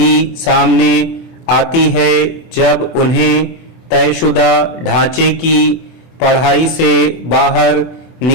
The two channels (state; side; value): late; right; 24 ms